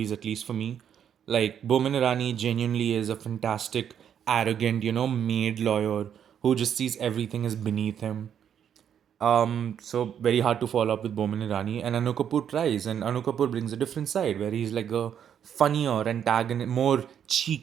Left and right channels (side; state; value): left; quieter; 8.8 dB